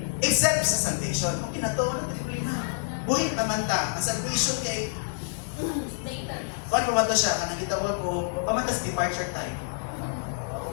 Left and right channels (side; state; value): right; quieter; 35.7 dB